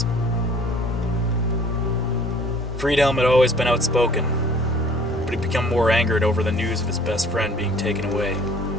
Friedhelm had always been outspoken, but he'd become more angered over the news of his best friend being taken away.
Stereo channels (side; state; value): both; normal; correlation 0.52